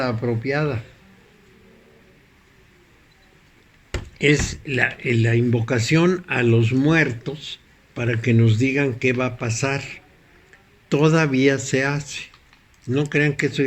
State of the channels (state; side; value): identical; both; correlation 1.00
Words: apropiada. Es la invocación a los muertos para que nos digan qué va a pasar. Todavía se hace. No crean que eso